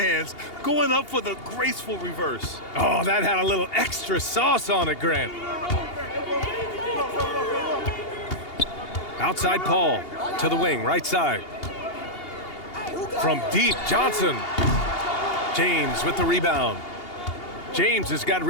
going up for the graceful reverse. Oh, that had a little extra sauce on it, Grant. Outside Paul, to the wing, right side. From deep, Johnson. James with the rebound. James has got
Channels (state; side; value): late; right; 2.8 ms